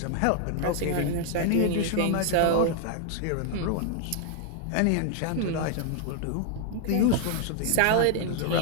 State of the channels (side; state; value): both; different; correlation 0.00